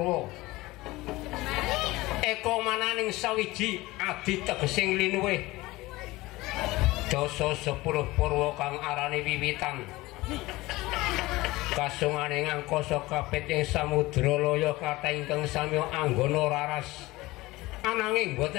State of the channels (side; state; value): right; quieter; 19.8 dB